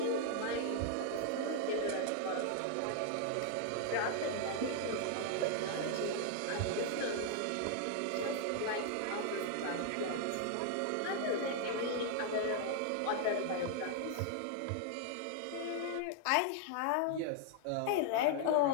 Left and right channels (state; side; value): different; both; correlation 0.00